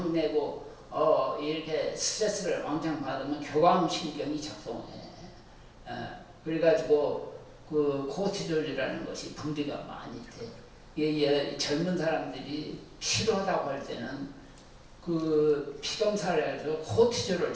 내고 이렇게 스트레스를 왕창 받으면 교감 신경이 작동해. 그래가지고 그 코티졸이라는 것이 분비가 많이 돼. 젊은 사람들이 필요하다고 할 때는 그 피검사를 해서 코티졸을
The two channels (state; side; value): identical; both; correlation 1.00